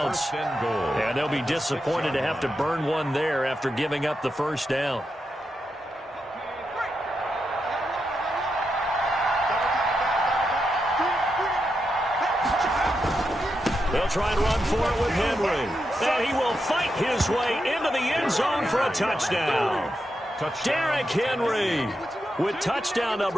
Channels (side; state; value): both; normal; correlation 0.86